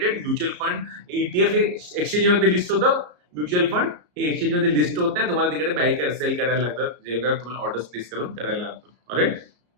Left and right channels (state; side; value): late; left; 34 ms